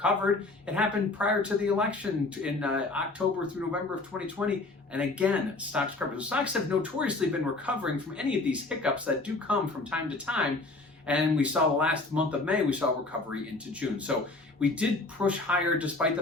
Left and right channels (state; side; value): quieter; right; 3.2 dB